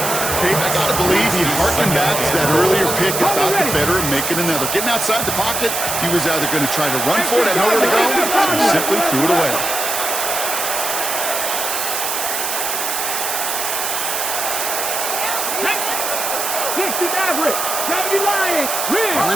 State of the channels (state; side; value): noise; right; hiss, 2 dB below the sound